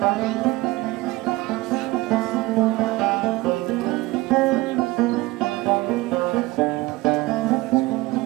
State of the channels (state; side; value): quieter; left; 19.9 dB